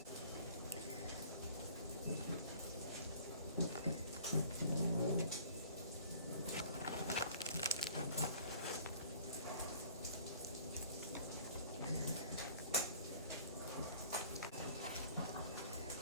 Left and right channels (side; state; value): both; inverted; correlation -0.50